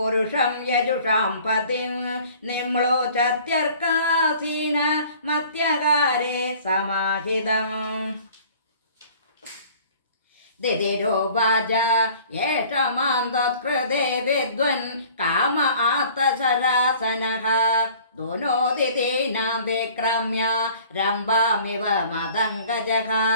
യജുഷാം പതിം നിമ്ലോചത്യർക്കാസീന മത്യകാരേ സമാഹിതം. ദിദിരോവാച. യേഷ മാം തത്കൃതേ വിദ്വൻ കാമ ആർത്തശരാസനഃ ദുനോദിതീനാം വിക്രമ്യ രംഭാമിവ മദംഗജഃ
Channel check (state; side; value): inverted; both; correlation -0.51